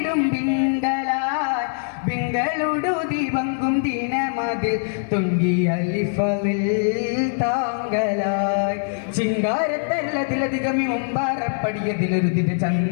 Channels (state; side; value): silent; right; 57 dB below the other